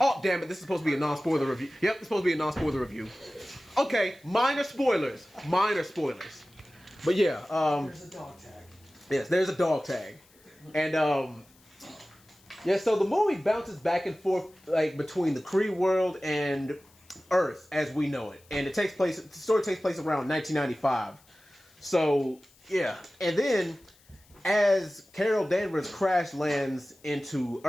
damn it. This is supposed to be a non-spoiler review. Yep, it's supposed to be a non-spoiler review. Okay, minor spoilers. But yeah. There's a dog tag. Yes, there's a dog tag. And, yeah, so the movie bounces back and forth like between the Kree world and Earth as we know it. And the story takes place around 1995. So, yeah. And then as Carol Danvers crash lands into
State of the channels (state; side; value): noise; left; hiss, 29 dB below the sound